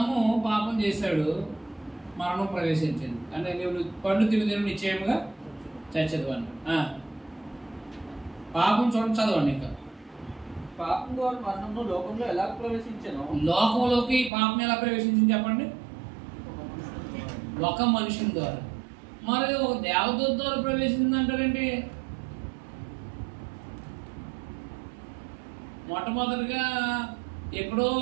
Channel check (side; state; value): left; drops out; at 14.3 s